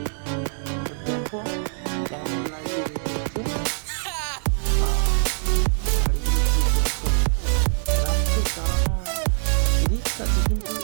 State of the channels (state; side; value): silent; left; 63 dB below the other